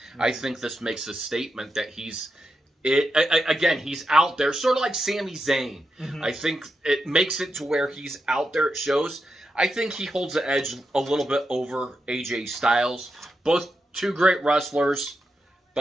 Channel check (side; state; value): both; normal; correlation 0.86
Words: Mm-hmm. I think this makes a statement that he's out there, sort of like Sami Zayn. Mm-hmm. I think it makes it to where he's out there. It shows. I think he holds the edge a little bit over AJ Styles. Both two great wrestlers,